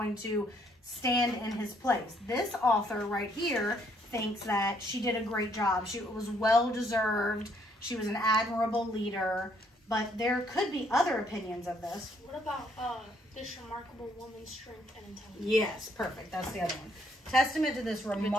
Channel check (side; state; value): both; normal; correlation 0.68